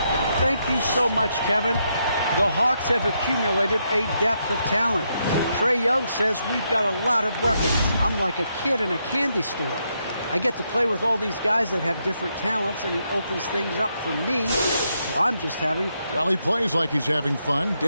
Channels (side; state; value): both; inverted; correlation -0.79